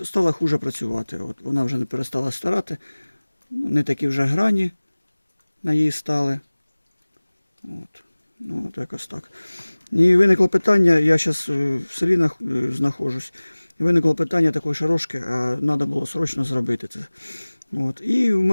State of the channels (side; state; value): both; inverted; correlation -1.00